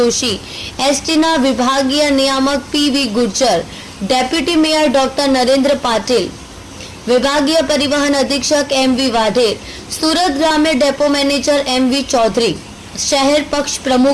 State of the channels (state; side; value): identical; both; correlation 1.00